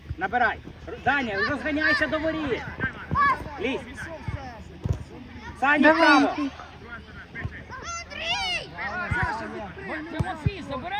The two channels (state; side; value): identical; both; correlation 1.00